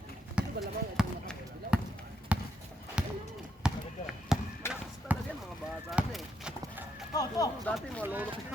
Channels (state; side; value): normal; both; correlation 0.77